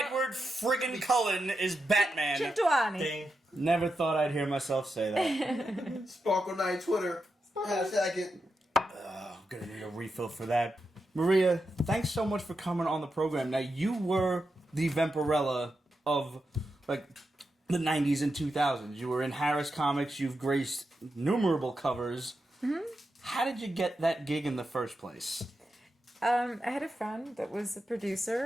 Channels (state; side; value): normal; both; correlation 0.87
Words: friggin' Cullen is Batman. Chitwani. Never thought I'd hear myself say that. Sparkle Night Twitter. Hashtag it. I'm gonna need a refill for that. Maria, thanks so much for coming on the program. Now, you were the Vampirella of, like, the 90s and 2000s. You were in Harris Comics. You've graced innumerable covers. Mm-hmm. How did you get that gig in the first place? I had a friend that was a